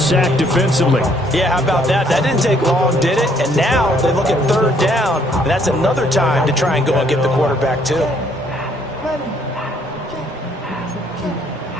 sack defensively. Yeah, how about that? That didn't take long, did it? And now they look at 3rd down, and that's another time to try and go and get the quarterback, too.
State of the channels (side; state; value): both; normal; correlation 0.66